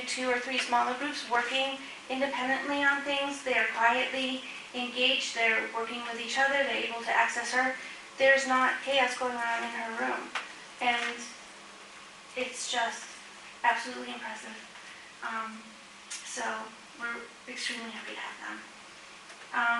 2 or 3 smaller groups working independently on things. They are quietly engaged, they're working with each other, they're able to access her. There's not chaos going on in her room, and it's just absolutely impressive. So we're extremely happy to have them.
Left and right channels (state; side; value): identical; both; correlation 1.00